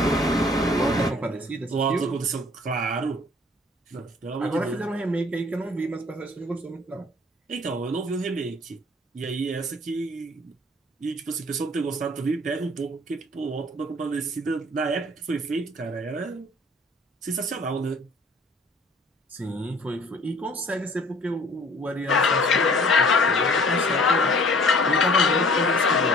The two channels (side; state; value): both; normal; correlation 0.52